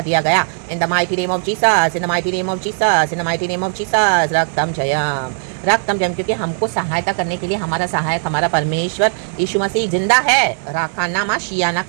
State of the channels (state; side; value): silent; left; digital silence